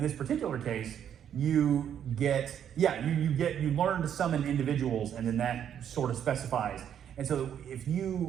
this particular case, you learn to summon individuals, and then that sort of specifies. And so if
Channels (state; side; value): quieter; left; 9.3 dB